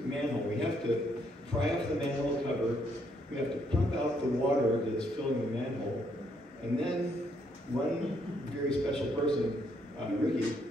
manhole. We have to pry off the manhole cover. We have to pump out the water that's filling the manhole. And then one very special person, Ricky,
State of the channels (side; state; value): both; normal; correlation 0.72